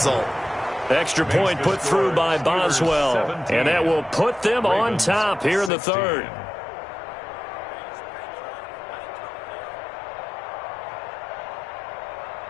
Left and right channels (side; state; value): right; drops out; at 5.7 s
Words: Extra point put through by Boswell, and that will put them on top here in the 3rd.